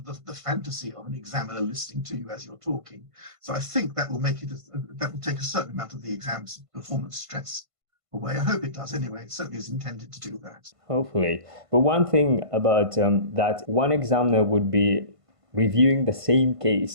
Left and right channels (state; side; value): late; left; 1.5 ms